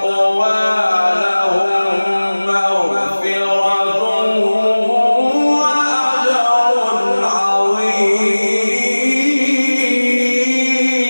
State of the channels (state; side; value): inverted; both; correlation -1.00